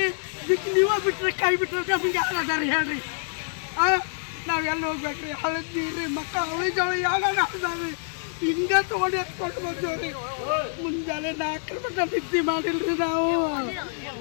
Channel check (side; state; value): right; silent; 61 dB below the other